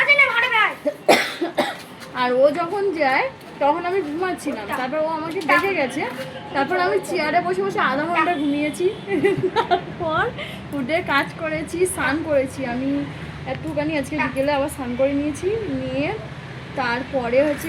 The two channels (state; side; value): identical; both; correlation 1.00